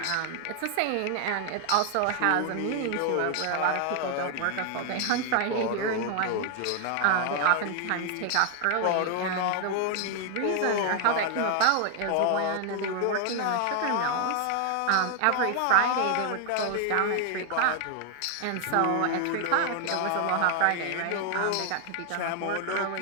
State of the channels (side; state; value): both; different; correlation 0.00